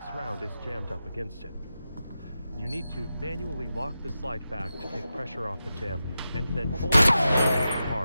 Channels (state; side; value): inverted; both; correlation -0.91